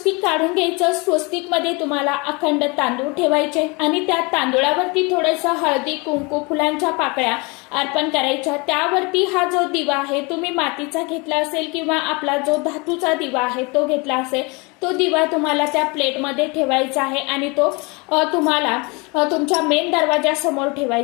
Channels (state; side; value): quieter; right; 28.2 dB